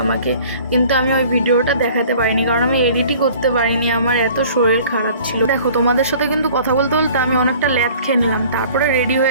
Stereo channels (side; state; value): both; inverted; correlation -0.49